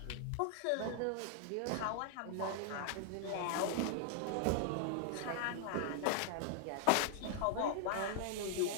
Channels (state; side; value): different; both; correlation 0.00